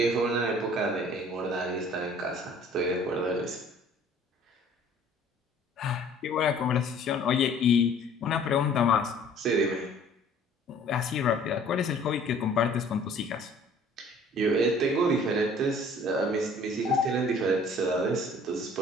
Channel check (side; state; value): both; normal; correlation 0.53